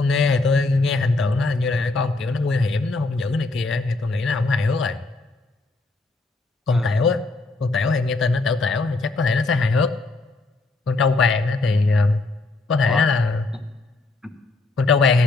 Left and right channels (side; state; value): right; quieter; 3.4 dB